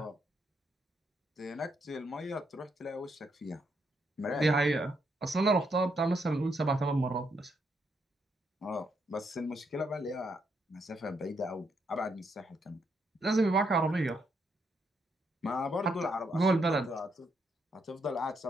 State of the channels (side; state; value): both; normal; correlation 0.77